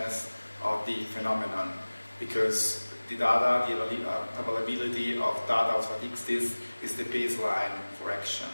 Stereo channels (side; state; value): both; inverted; correlation -1.00